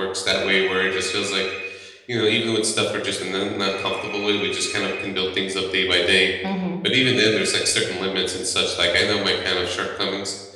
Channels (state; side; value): identical; both; correlation 1.00